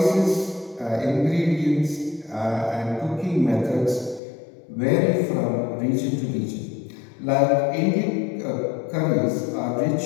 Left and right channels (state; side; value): drops out; right; at 4.2 s